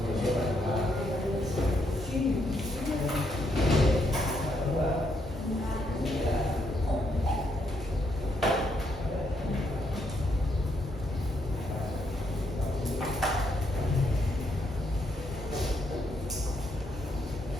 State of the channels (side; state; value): both; normal; correlation 0.76